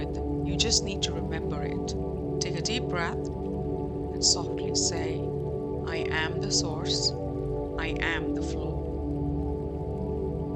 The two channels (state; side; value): identical; both; correlation 1.00